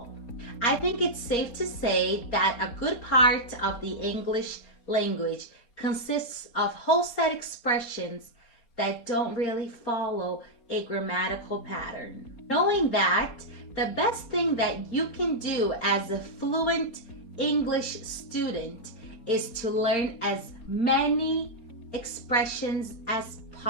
I think it's safe to say that a good part of the English language consists of whole set expressions that don't really follow a grammatical pattern. Knowing that, the best thing that you can do as a fluent English student is to learn as many expressions as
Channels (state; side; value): late; right; 4.3 ms